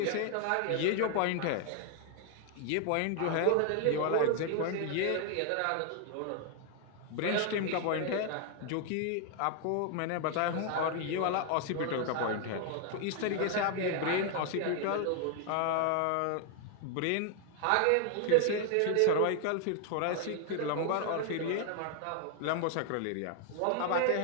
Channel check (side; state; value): both; different; correlation 0.00